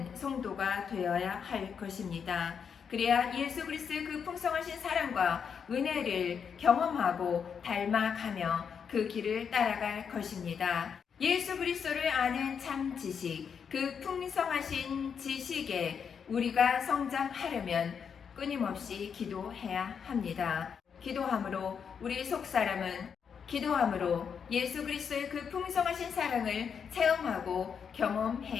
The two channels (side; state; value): right; quieter; 6.9 dB